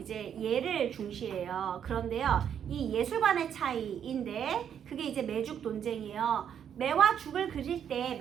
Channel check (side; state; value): left; quieter; 8.7 dB